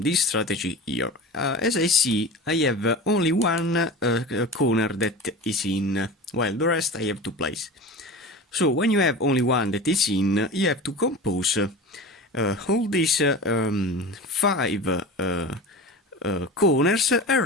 strategy here. As I see, I have only one corner that is in, while the rest I have to place. So when you have only one that is in, you have to compose all these five corners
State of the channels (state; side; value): normal; both; correlation 0.32